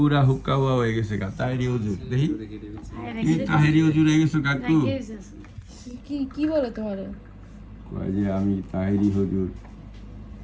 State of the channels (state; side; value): identical; both; correlation 1.00